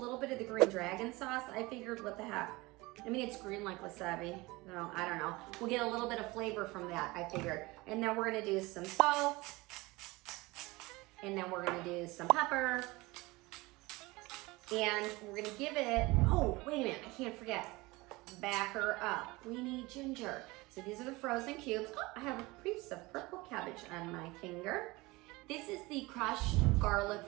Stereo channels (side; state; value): left; quieter; 22.3 dB